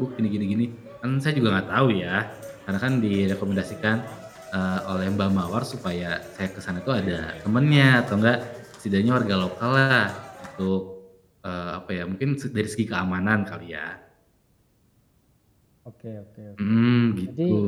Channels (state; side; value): identical; both; correlation 1.00